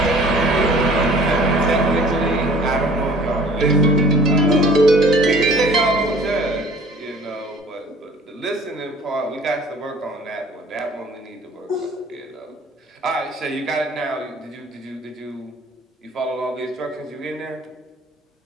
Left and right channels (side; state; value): both; normal; correlation 0.51